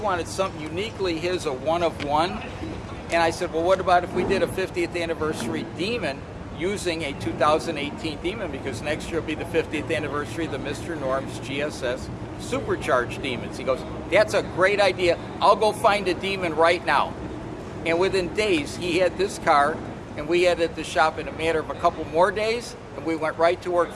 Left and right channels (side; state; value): both; identical; correlation 1.00